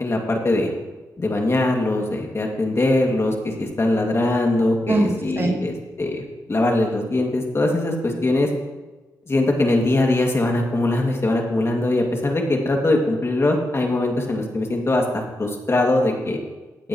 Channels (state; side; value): normal; both; correlation 0.87